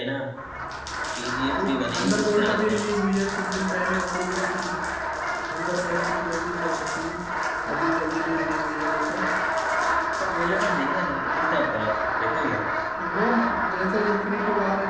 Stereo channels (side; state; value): both; identical; correlation 1.00